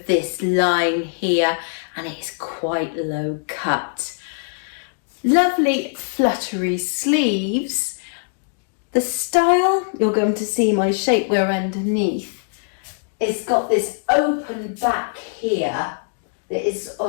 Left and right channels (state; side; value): silent; right; digital silence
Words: this line here, and it's quite low cut. Lovely fluttery sleeves. The style, you're going to see my shapewear underneath. It's got this open back here that is